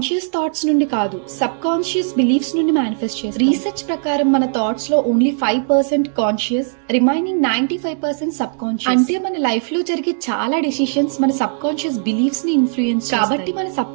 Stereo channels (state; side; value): silent; left; digital silence